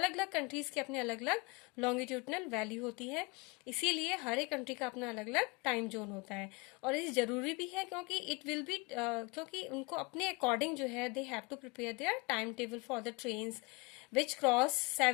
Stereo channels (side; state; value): right; quieter; 26.7 dB